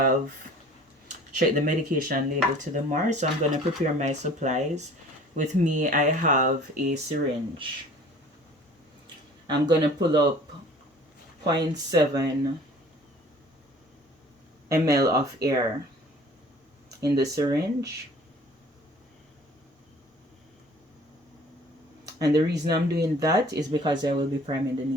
checked the medication label to the MAR. So I'm going to prepare my supplies. With me, I have a syringe. I'm going to pull up 0.7 ml of air in the syringe. And the reason I'm doing that is because I will be priming the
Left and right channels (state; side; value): normal; both; correlation 0.49